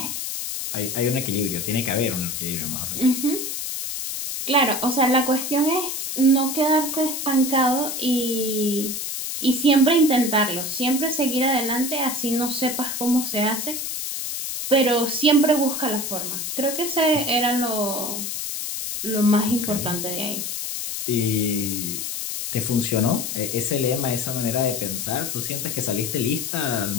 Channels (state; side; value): noise; left; hiss, 4 dB below the sound